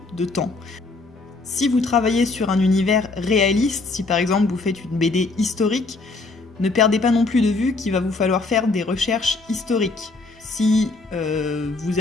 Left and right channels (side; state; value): right; quieter; 3.6 dB